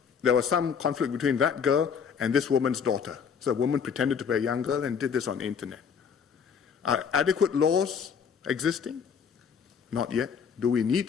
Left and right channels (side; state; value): right; quieter; 6.8 dB